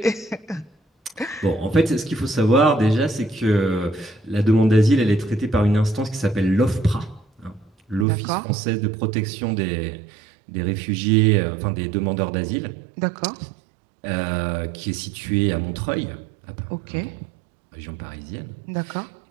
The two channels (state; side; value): drops out; left; at 8.1 s